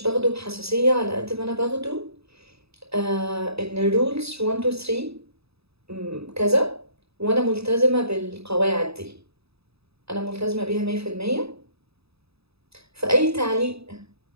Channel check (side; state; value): left; late; 0.78 ms